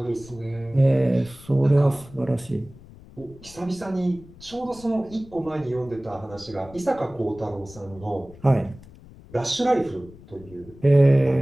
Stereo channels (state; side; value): noise; left; rumble, 21 dB below the sound